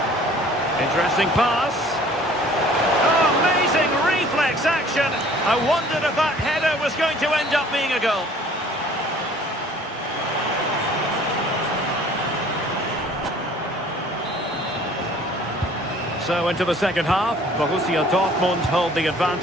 Interesting pass. Oh, amazing reflex action. I wondered if that header was going to end up being a goal. So into the second half, Borussia Dortmund hold the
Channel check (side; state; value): both; normal; correlation 0.53